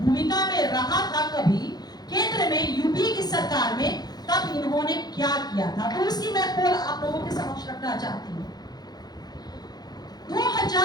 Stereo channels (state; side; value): late; right; 0.19 ms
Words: भूमिका में रहा था कभी केंद्र में यूपी की सरकार में, तब इन्होंने क्या किया था। तो उसकी मैं पोल आप लोगों के समक्ष रखना चाहती हूँ।